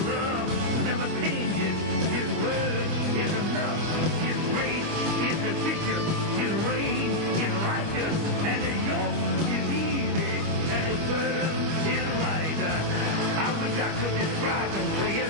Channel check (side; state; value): left; late; 25 ms